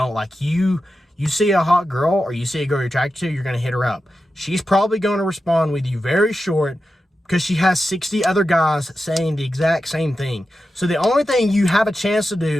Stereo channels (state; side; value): normal; both; correlation 0.91